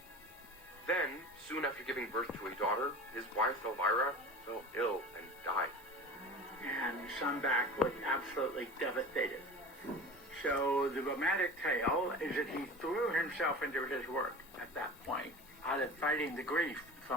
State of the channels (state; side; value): normal; both; correlation 0.34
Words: Then, soon after giving birth to a daughter, his wife Elvira fell ill and died. And Sundback was absolutely devastated. So the romantic tale is that he threw himself into his work at that point, out of fighting the grief